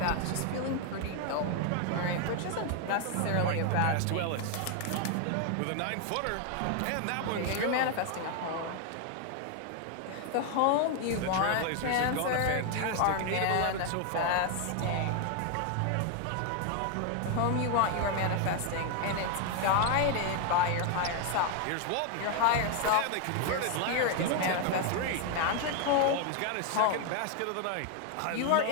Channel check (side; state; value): both; different; correlation 0.00